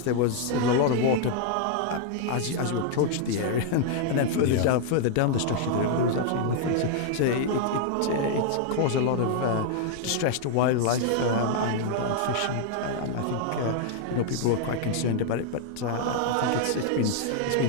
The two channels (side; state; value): both; different; correlation 0.00